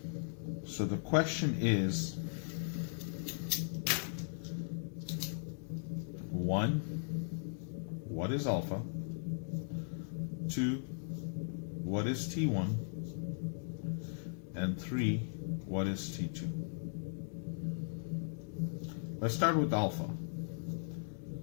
So the question is, 1, what is alpha? 2, what is T1? And 3, what is T2? Let's start with alpha.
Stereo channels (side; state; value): right; silent; digital silence